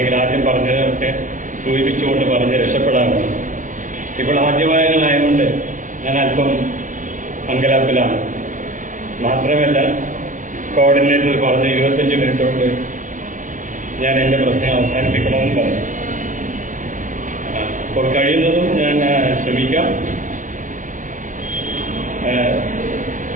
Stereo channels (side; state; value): left; late; 0.37 ms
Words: ആദ്യം പറഞ്ഞതൊക്കെ സൂചിപ്പിച്ചുകൊണ്ട് പറഞ്ഞ് രക്ഷപ്പെടാറുണ്ട്. ഇപ്പോൾ ആദ്യവായനമായതുകൊണ്ട് ഞാൻ അല്പം അങ്കലാപ്പിലാണ്. മാത്രമല്ല കോർഡിനേറ്റർ പറഞ്ഞ് 25 മിനിറ്റ് കൊണ്ട് ഞാൻ എൻ്റെ പ്രശ്നം അവസാനിപ്പിക്കണമെന്ന് പറഞ്ഞു. അപ്പോൾ കഴിയുന്നതും ഞാൻ ശ്രമിക്കാം.